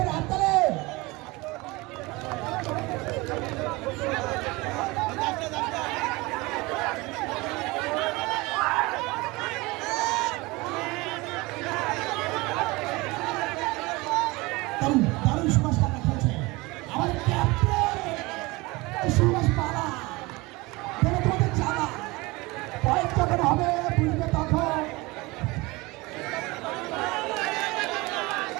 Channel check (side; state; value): left; quieter; 23.1 dB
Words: দারুণ সুভাষ কাকা খেলছে আমাদের ক্যাপ্টেন সুভাষ পালা দেখে তোমাদের জানা পয়েন্ট যখন হবে বুঝবে তখন